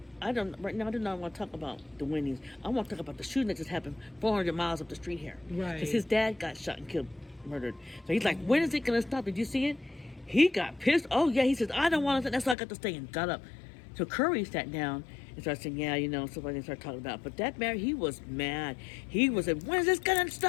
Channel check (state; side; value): drops out; right; at 12.6 s